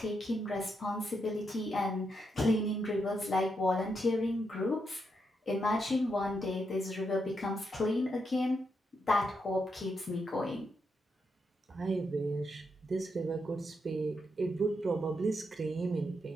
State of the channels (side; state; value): both; normal; correlation 0.82